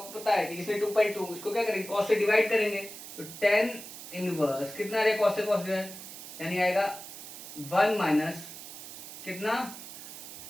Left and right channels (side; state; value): right; noise; hiss, 12 dB below the sound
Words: पता है कि जिसने 2.2 इसको क्या करेंगे कॉस्ट से डिवाइड करेंगे, तो tan इनवर्स कितना आ रहा है कॉस्ट से कॉस्ट डिवाइड, यानी आएगा 1 माइनस कितना